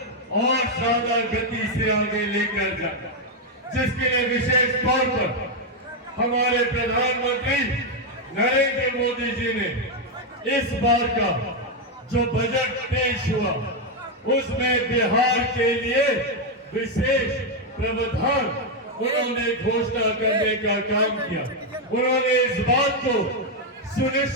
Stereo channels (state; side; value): normal; both; correlation 0.03